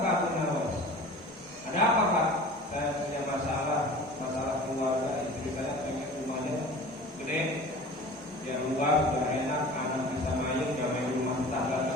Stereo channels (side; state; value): both; normal; correlation 0.40